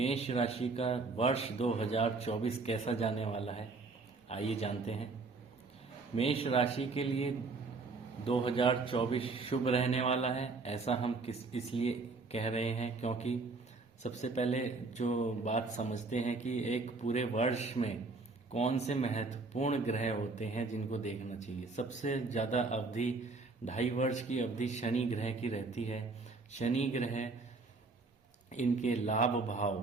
राशि का वर्ष 2024 कैसा जाने वाला है, आइए जानते हैं। मेष राशि के लिए 2024 शुभ रहने वाला है, ऐसा हम इसलिए कह रहे हैं क्योंकि सबसे पहले जो बात समझते हैं कि एक पूरे वर्ष में कौन से महत्वपूर्ण ग्रह होते हैं जिनको देखना चाहिए। सबसे ज़्यादा अवधि 2.5 वर्ष की अवधि शनि ग्रह की रहती है। शनि ग्रह इनके लाभ भाव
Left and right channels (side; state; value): left; quieter; 3.8 dB